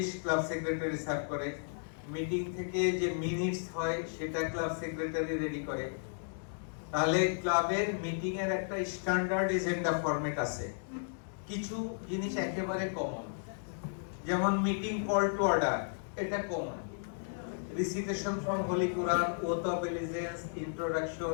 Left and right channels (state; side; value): silent; right; digital silence